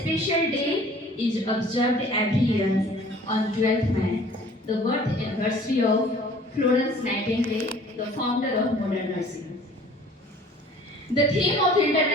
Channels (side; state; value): both; normal; correlation 0.51